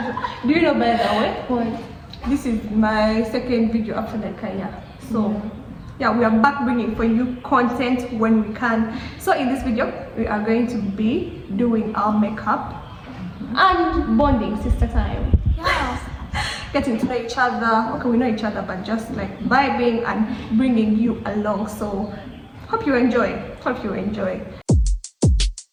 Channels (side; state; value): both; identical; correlation 1.00